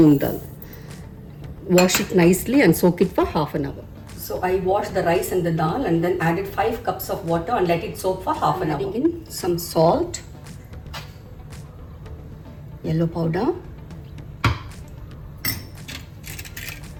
dal. Wash it nicely and soak it for half an hour. So I washed the rice and the dal and then added 5 cups of water and let it soak for half an hour. Adding in some salt, yellow powder,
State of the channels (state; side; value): identical; both; correlation 1.00